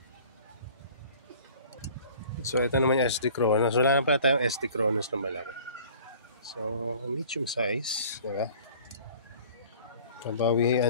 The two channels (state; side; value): inverted; both; correlation -0.48